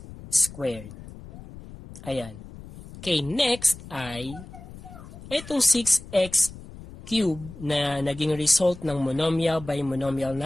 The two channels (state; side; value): noise; left; rumble, 16 dB below the sound